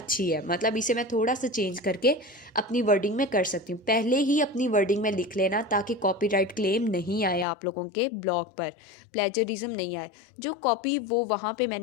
है, मतलब इसे मैं थोड़ा सा चेंज करके अपनी वर्डिंग में कर सकती हूँ। पहले ही अपनी वर्डिंग में लिख लेना ताकि कॉपीराइट क्लेम नहीं आए आप लोगों के ब्लॉग पर, प्लेजरिज्म नहीं आए। जो कॉपी वो वहाँ पे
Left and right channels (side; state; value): right; drops out; at 7.5 s